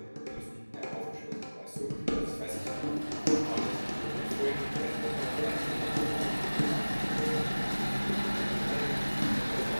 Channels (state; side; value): inverted; both; correlation -1.00